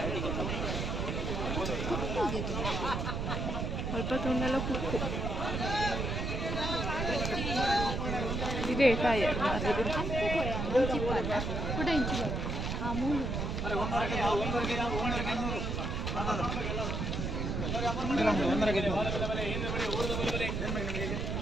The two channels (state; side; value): noise; right; rumble, 1 dB below the sound